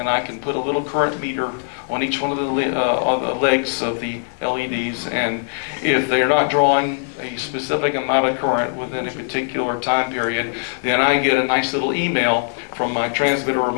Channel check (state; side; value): silent; right; 65 dB below the other